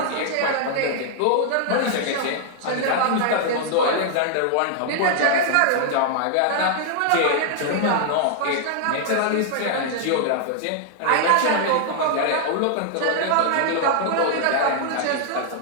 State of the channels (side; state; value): both; different; correlation -0.01